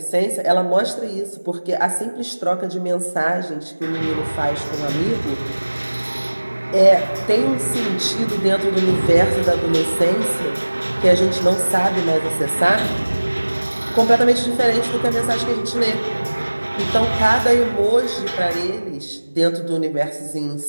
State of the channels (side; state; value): both; inverted; correlation -1.00